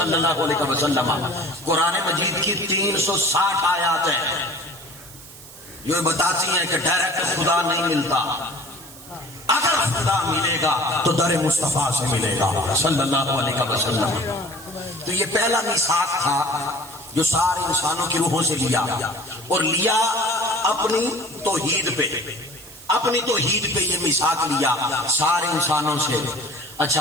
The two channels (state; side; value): noise; right; hiss, 18 dB below the sound